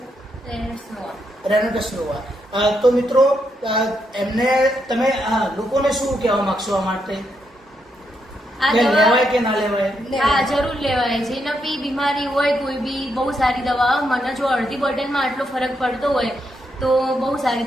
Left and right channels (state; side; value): normal; both; correlation 0.80